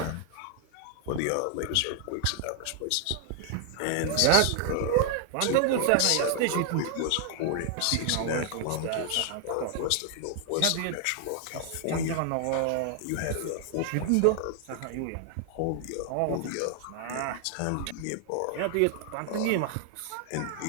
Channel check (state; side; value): different; both; correlation 0.00